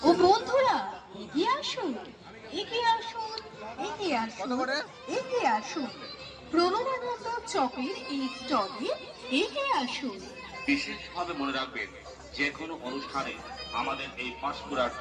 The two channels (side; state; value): both; identical; correlation 1.00